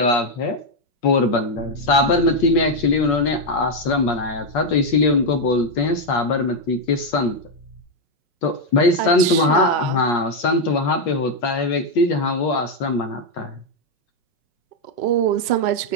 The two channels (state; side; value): late; right; 5.4 ms